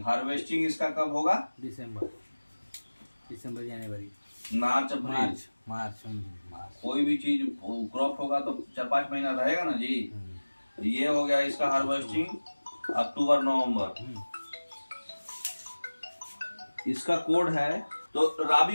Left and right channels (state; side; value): inverted; both; correlation -1.00